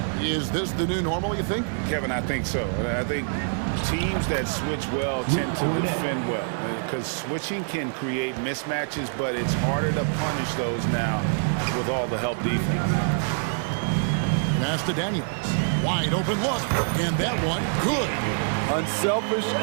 Is this the new normal, you think? Kevin, I think so. I think teams that switch well tend to defend well, because switching can create mismatches, but it's harder to punish those now with all the help defense. Pass to Daniels. Wide open look, and that one good. Unselfish,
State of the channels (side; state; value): left; silent; digital silence